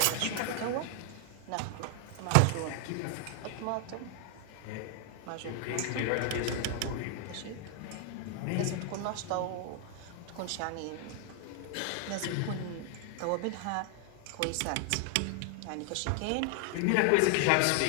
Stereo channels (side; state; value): both; different; correlation 0.00